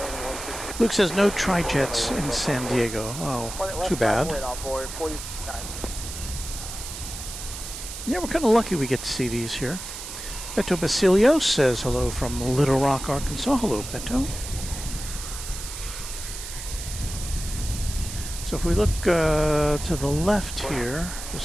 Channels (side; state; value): right; noise; hiss, 9 dB below the sound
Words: Luke says no tri-jets in San Diego. Oh, too bad. Yeah, we're kind of lucky we get to see these here. Beto Basilio says hello from Little Rock, Arkansas. Hello, Beto. So if we look to the left here,